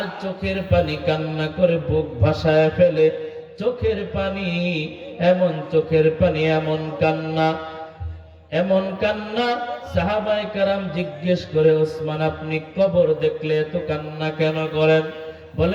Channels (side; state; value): both; identical; correlation 1.00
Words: চোখের পানি কান্না করে বুক ভাসায় ফেলে। চোখের পানি, এমন চোখের পানি, এমন কান্না, এমন কান্না। সাহাবায়ে কেরাম জিজ্ঞেস করে, উসমান, আপনি কবর দেখলে এত কান্না কেন করেন?